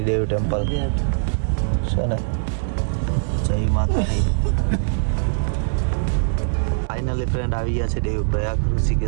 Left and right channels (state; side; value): silent; left; digital silence